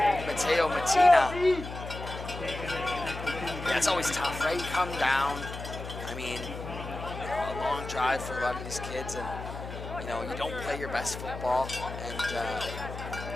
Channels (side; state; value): left; noise; hum, 9 dB below the sound